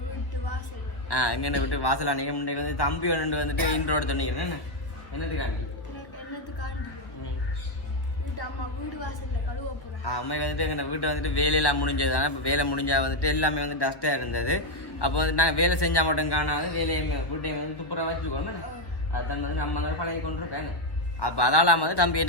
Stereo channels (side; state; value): right; late; 1.2 ms